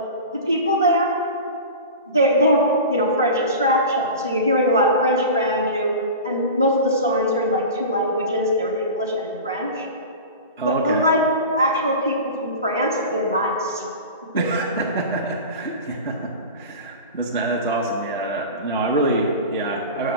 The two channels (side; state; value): both; inverted; correlation -0.31